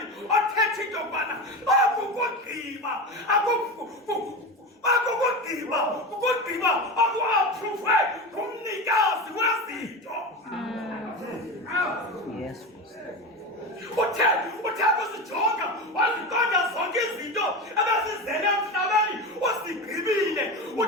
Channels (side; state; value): both; normal; correlation 0.24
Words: othethe into yokubana akukugqiba ukugqiba akuapprove kumnikazi wezinto. Yes. Uthe kuzijonga waziqonda zonke izinto ebezizele emhlabeni usigqibile.